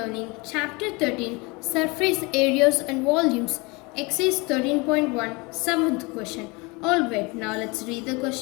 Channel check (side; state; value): right; quieter; 26.7 dB